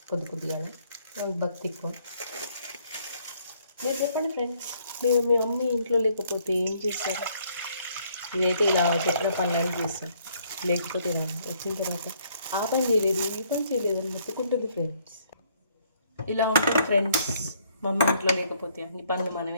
కొద్దిగా వాళ్ళకి భక్తి ఎక్కువ. మీరు చెప్పండి ఫ్రెండ్స్, మీరు మీ మమ్మీ ఇంట్లో లేకపోతే ఏం చేస్తారు? ఇదైతే ఇలా చెప్పిన పనులను చేస్తాం, లేకపోతే ఇలా వచ్చిన తర్వాత ఆ పని చేయలేదు ఈ పని చేయలేదు అని మొత్తుకుంటుంది ఫ్రెండ్స్. ఇలా ఉంటుంది ఫ్రెండ్స్, మా అమ్మ ఇంట్లో లేకపోతే అన్ని పనులు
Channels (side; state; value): both; inverted; correlation -0.66